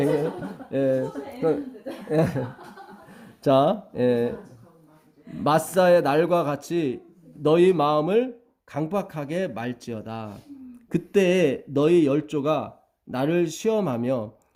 예. 자, 마사의 날과 같이 너희 마음을 강박하게 말지어다. 그때 너희 열조가 나를 시험하며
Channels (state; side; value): identical; both; correlation 1.00